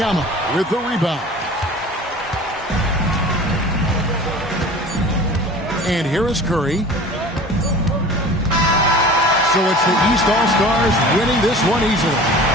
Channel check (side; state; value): both; normal; correlation 0.41